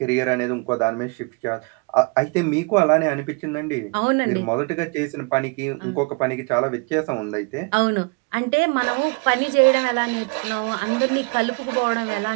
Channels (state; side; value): quieter; left; 32.0 dB